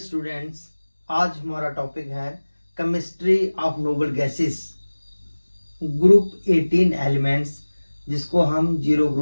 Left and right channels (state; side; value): inverted; both; correlation -1.00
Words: आज हमारा topic है chemistry of noble gases, group 18 elements, जिसको हम जीरो